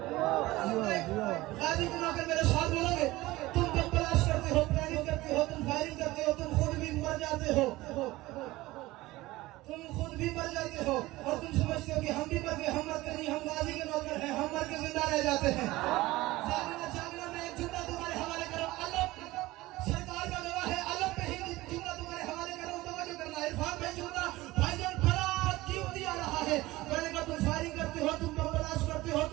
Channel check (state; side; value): quieter; left; 18.8 dB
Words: गाजी को आकर मेरे साथ बोलोगे। तुम जब तलाश करते हो, प्लानिंग करते हो, तुम फायरिंग करते हो, तुम खुद भी मर जाते हो, और तुम समझते हो कि हम भी मर गए। हम मरते नहीं, हम गाजी के नौकर हैं, हम मर के जिंदा रह जाते हैं। जागना मैं एक जुमला तुम्हारे हवाले करूं। अल्लाह सरकार का गवाह है, अल्लाह पे ही जुमला तुम्हारे हवाले करूं। तवज्जो करना, इरफान भाई जुमला भाईजान बड़ा कीमती आ रहा है। मैंने कहा तुम फायरिंग करते हो, तुम तलाश करते हो,